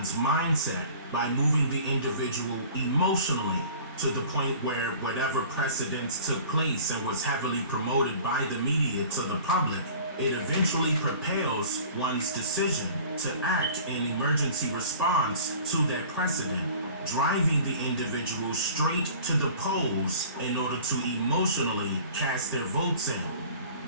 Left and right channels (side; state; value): both; inverted; correlation -0.45